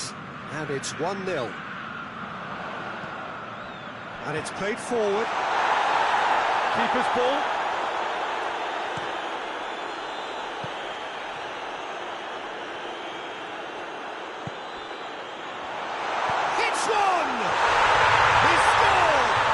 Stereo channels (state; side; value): identical; both; correlation 1.00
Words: and it's 1-0. And it's played forward. Keeper's ball. Hits one! He scored!